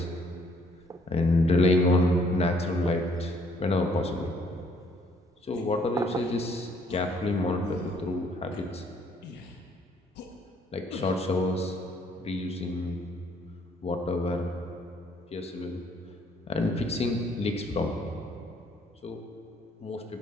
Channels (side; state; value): both; normal; correlation 0.64